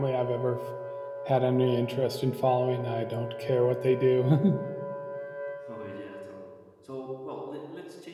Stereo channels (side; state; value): both; identical; correlation 1.00